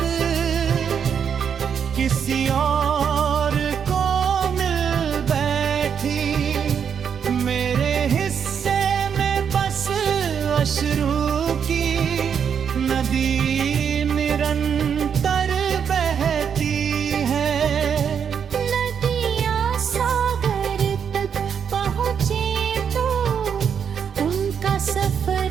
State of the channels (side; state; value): left; quieter; 7.5 dB